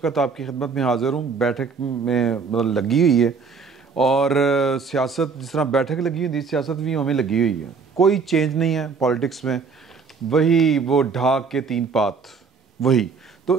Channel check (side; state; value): left; quieter; 5.2 dB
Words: आपकी खिदमत में हाज़िर हूँ। बैठक में मतलब लगी हुई है और सियासत जिस तरह बैठक लगी हुई थी, सियासत भी हमें लगी हुई है। कोई चेंज नहीं है पॉलिटिक्स में, वही वो ढाक के तीन पात वही।